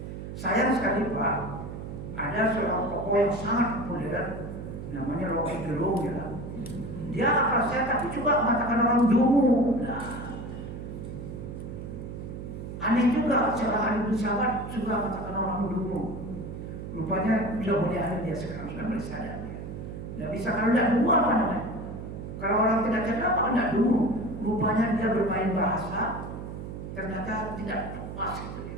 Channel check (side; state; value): right; noise; hum, 8 dB below the sound